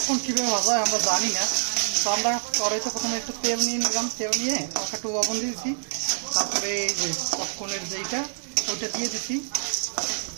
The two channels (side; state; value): left; silent; digital silence